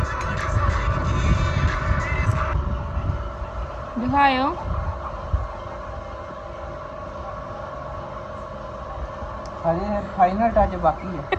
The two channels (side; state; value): both; identical; correlation 1.00